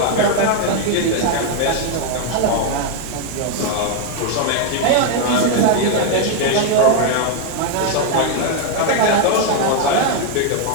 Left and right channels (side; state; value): both; different; correlation 0.01